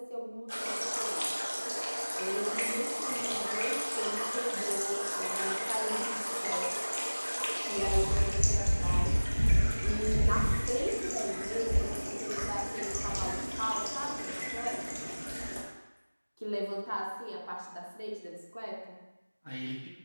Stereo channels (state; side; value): inverted; both; correlation -1.00